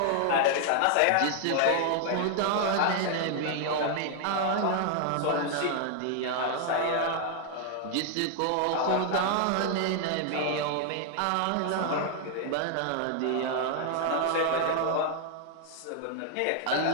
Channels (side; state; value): both; different; correlation 0.00